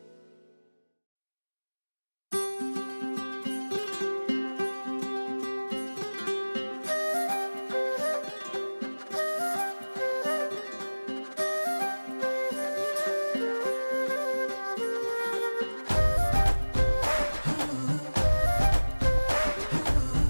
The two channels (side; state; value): both; inverted; correlation -1.00